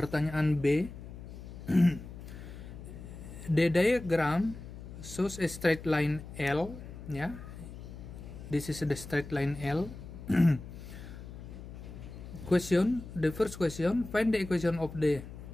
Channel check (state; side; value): noise; left; hum, 12 dB below the sound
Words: B, the diagram shows a straight line L, this is the straight line L. The first question, find the equation of the